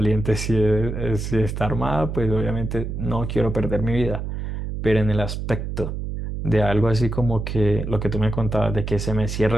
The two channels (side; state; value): right; noise; hum, 5 dB below the sound